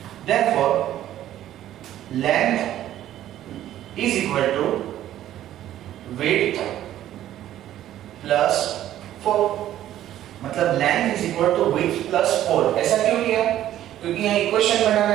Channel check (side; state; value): left; quieter; 12.5 dB